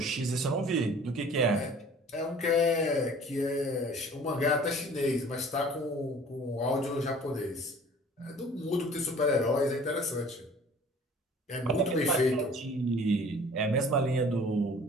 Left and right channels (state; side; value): normal; both; correlation 0.49